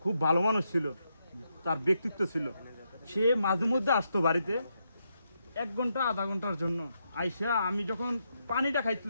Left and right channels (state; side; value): inverted; both; correlation -0.81